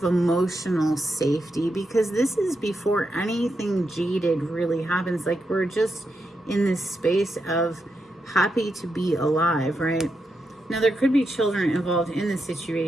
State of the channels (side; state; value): both; normal; correlation 0.85